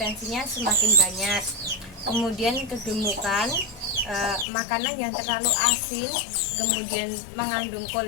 semakin banyak. Kemudian kegemukan, makanan yang terlalu asin, kemudian mengandung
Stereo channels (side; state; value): right; drops out; at 4.5 s